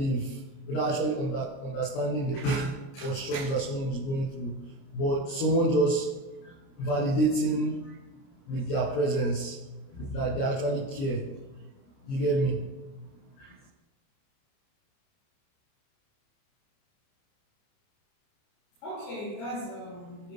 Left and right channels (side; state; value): right; late; 30 ms